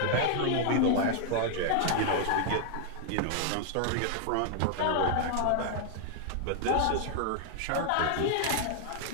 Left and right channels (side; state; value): both; different; correlation 0.00